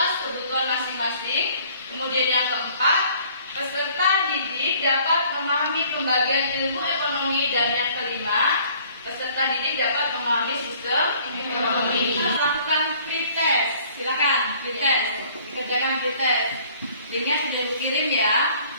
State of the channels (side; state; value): both; inverted; correlation -0.56